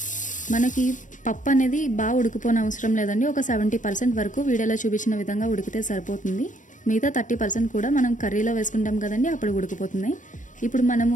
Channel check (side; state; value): right; late; 0.37 ms